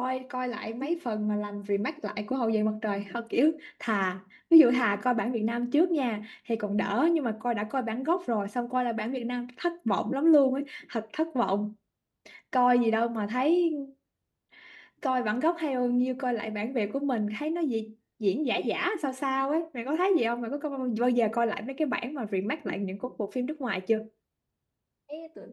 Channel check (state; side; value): identical; both; correlation 1.00